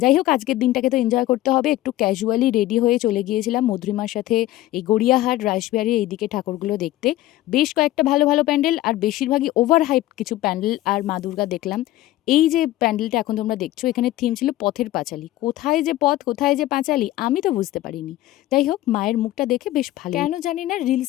হোক আজকের দিনটাকে তো এনজয় করতে হবে। একটু ক্যাজুয়ালি রেডি হয়ে চলে গিয়েছিলাম মধুরিমার সাথে এই গড়িয়াহাট, রাসবিহারী এইদিকে ঠাকুরগুলো দেখতে। বেশ কয়েকটা ভালো, ভালো প্যান্ডেল আর বেশিরভাগই ওভার হাইপড কিছু প্যান্ডেল আর মা দুর্গা দেখলাম। এই যে প্যান্ডেলটা এখন তোমরা দেখছো এখানে থিম ছিল পথের পাঁচালী। কোথায় যে পথ, কোথায় যে পাঁচালী আমি তো বুঝতে পারিনি। যাই হোক মায়ের মুখটা দেখে বেশ ভালো কেন জানি না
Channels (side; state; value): right; quieter; 15.4 dB